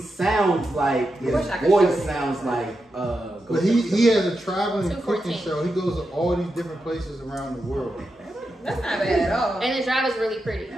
like his wish I could voice show you. sounds like But he has a traveling cooking 214. show. He goes to all these different places around the world. That's not bad at all. And the drive is really pretty.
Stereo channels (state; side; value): normal; both; correlation 0.88